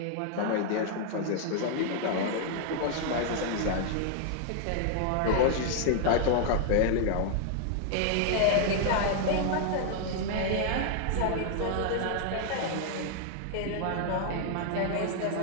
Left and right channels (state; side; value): different; both; correlation 0.00